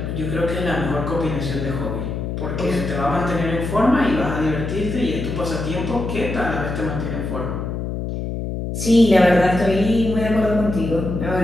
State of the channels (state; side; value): noise; left; hum, 4 dB below the sound